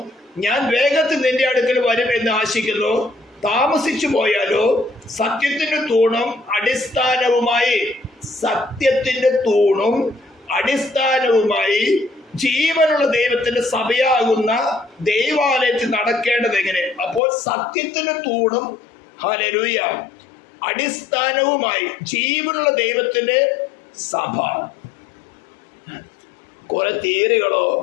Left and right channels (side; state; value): right; drops out; at 17.2 s